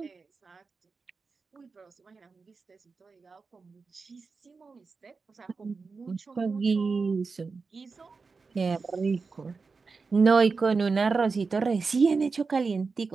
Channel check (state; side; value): quieter; left; 4.5 dB